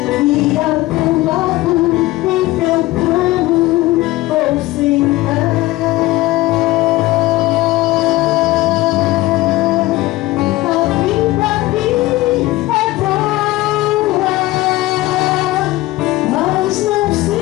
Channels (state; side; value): quieter; right; 18.5 dB